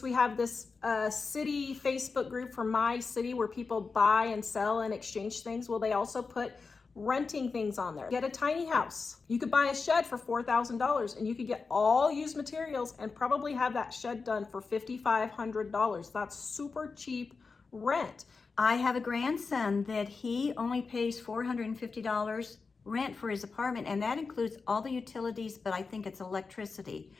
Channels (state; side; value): quieter; right; 4.6 dB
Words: We have this city Facebook group for my city where people buy and sell and exchange things. Well, they also put renting things on there. Get a tiny house. You could buy a shed for $4,000 and you could get all used materials and probably have that shed done for $5,500. That's super cheap rent. I have a grandson that he only pays $450 rent for his apartment, and that includes all the utilities, but I think it's electricity.